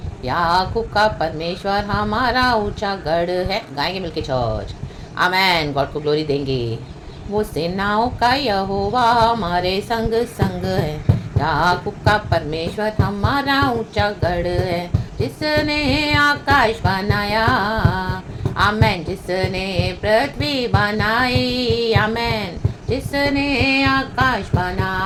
याकूब का परमेश्वर हमारा ऊंचा गढ़ है। गाएंगे मिलके चर्च, आमेन। गॉड को ग्लोरी देंगे। वो सेनाओं का यहोवा हमारे संग संग है, याकूब का परमेश्वर हमारा ऊंचा गढ़ है। जिसने आकाश बनाया, आमेन। जिसने पृथ्वी बनाई, आमेन। जिसने आकाश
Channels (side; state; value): both; identical; correlation 1.00